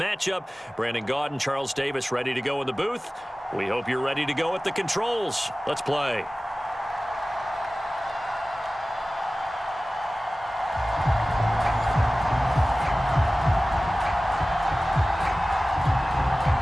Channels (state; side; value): normal; both; correlation 0.97